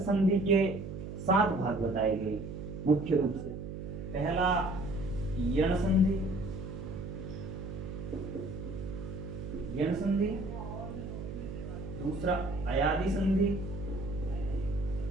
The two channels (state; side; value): noise; right; hum, 8 dB below the sound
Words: के 7 भाग बताए गए मुख्य रूप से। पहला यण संधि, यण संधि। दूसरा अयादि संधि,